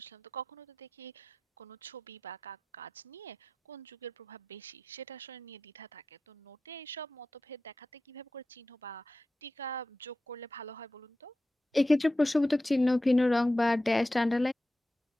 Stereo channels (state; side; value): normal; both; correlation 0.93